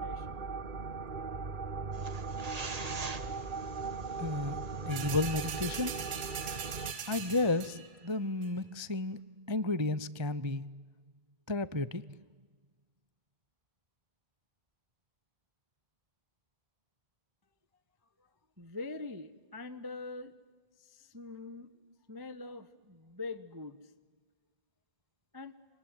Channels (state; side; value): late; left; 2.2 ms